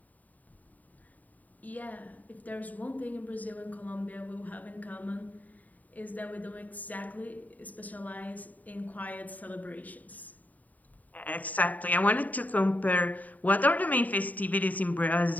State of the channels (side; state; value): right; late; 0.076 ms